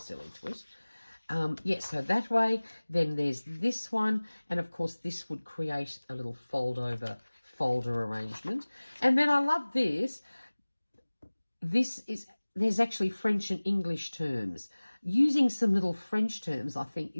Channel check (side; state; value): both; inverted; correlation -1.00